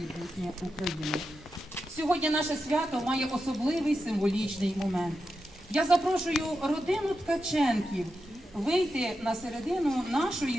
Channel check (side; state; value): both; normal; correlation 0.88